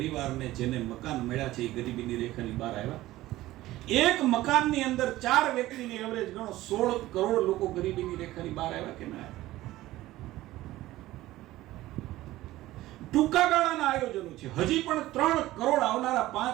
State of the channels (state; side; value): quieter; left; 16.5 dB